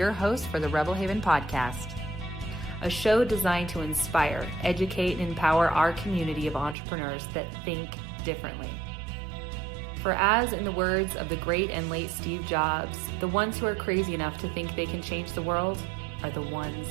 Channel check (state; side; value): drops out; left; at 6.8 s